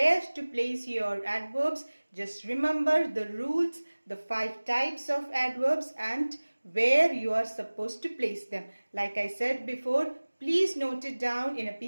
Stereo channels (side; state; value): both; inverted; correlation -1.00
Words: to place your adverbs. Just remember the rules, the 5 types of adverbs and where you are supposed to place them. Like I said before, please note it down in a